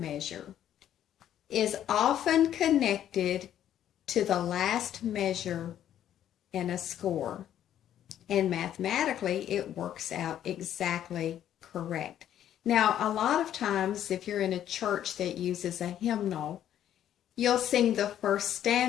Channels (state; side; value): quieter; right; 10.9 dB